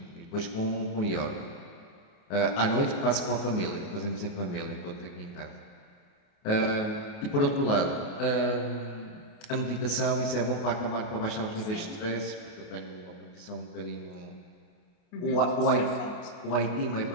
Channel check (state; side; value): late; right; 29 ms